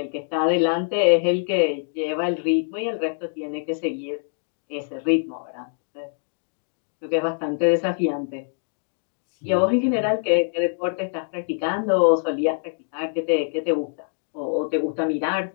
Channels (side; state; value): right; silent; digital silence